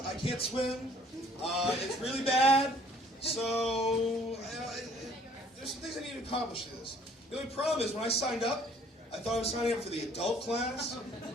I can't swim. It's really bad. So, there's some things I need to accomplish to this. The only problem is when I signed up, I thought I was signing up for the adult class,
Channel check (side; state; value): both; normal; correlation 0.57